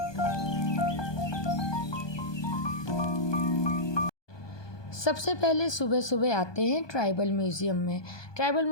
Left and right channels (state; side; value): late; right; 1.2 ms